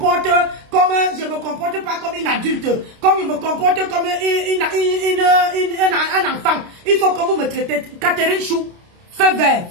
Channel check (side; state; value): left; late; 29 ms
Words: comme je me comporte pas comme une adulte, comme je me comporte comme un enfant, il faut que vous me traitez. Catherine Chou, feu vert,